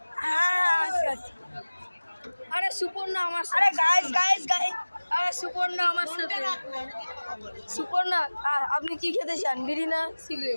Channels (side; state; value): both; inverted; correlation -1.00